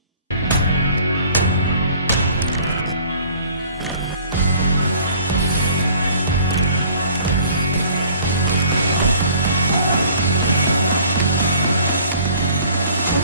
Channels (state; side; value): inverted; both; correlation -0.52